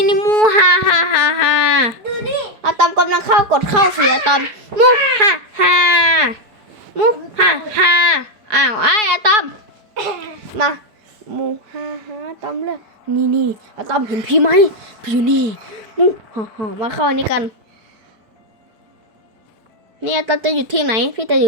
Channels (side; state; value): left; late; 4.7 ms